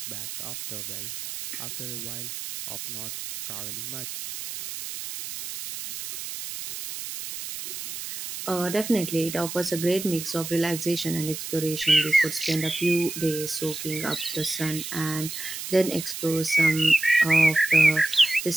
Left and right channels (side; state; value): right; noise; hiss, 8 dB below the sound